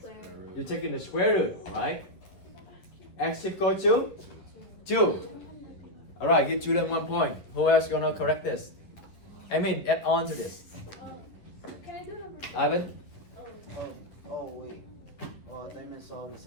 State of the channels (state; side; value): late; right; 11 ms